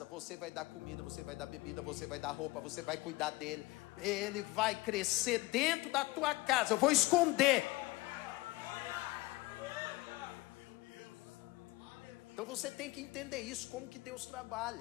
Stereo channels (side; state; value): right; quieter; 20.8 dB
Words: você vai dar comida, você vai dar bebida, você vai dar roupa, você vai cuidar dele, ele vai crescer dentro da tua casa, eu vou esconder. Então você tem que entender isso, como que Deus